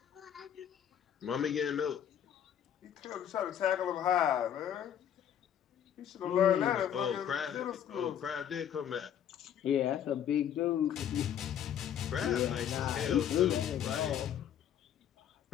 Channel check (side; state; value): right; quieter; 9.6 dB